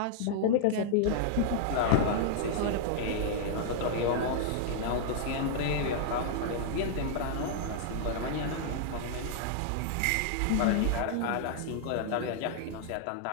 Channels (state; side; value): different; both; correlation -0.01